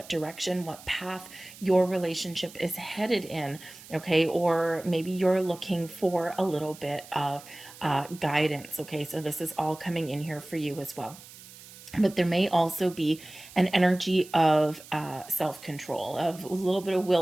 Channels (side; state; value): right; noise; hiss, 19 dB below the sound